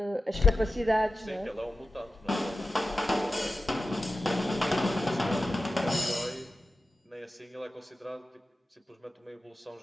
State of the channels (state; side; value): normal; both; correlation 0.93